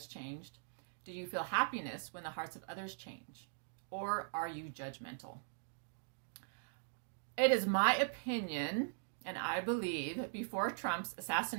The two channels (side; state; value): left; silent; digital silence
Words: changed? Do you feel happiness when the hearts of others change? Or are you judgmental? It is my opinion, and I believe, before Trump's